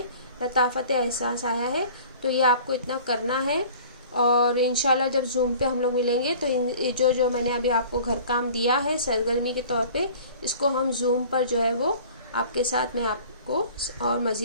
لطافت احساس آیا ہے۔ تو یہ آپ کو اتنا کرنا ہے، اور انشاءاللہ جب زوم پہ ہم لوگ ملیں گے تو جو میں نے ابھی آپ کو گھر کام دیا ہے سرگرمی کے طور پہ، اس کو ہم زوم پر جو ہے وہ آپ کے ساتھ میں آپ کو اور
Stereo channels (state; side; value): inverted; both; correlation -0.46